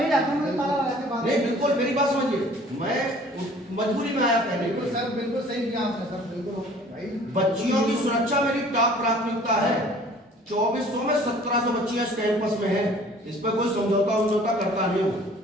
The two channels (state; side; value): normal; both; correlation 0.51